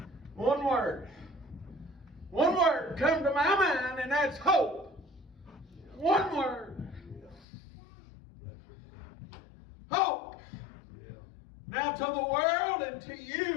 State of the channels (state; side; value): drops out; right; at 7.5 s